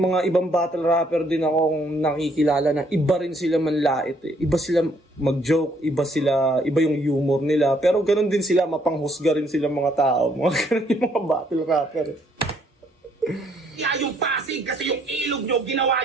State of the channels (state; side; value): normal; both; correlation 0.67